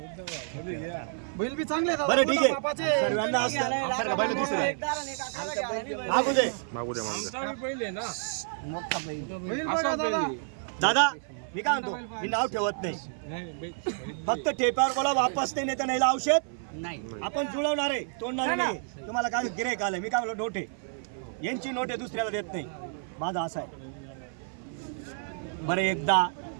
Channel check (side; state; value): left; silent; 55 dB below the other